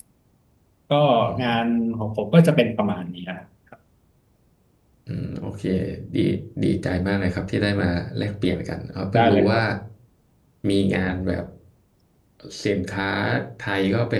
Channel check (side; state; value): both; identical; correlation 1.00